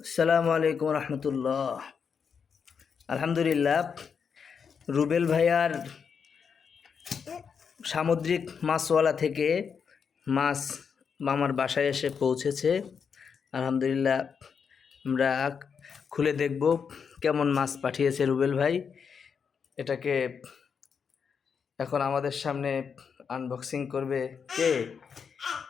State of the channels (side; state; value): right; quieter; 6.4 dB